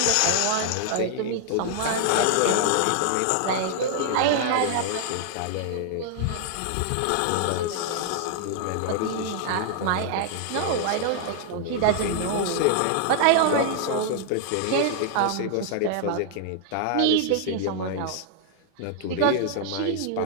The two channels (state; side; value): different; both; correlation 0.00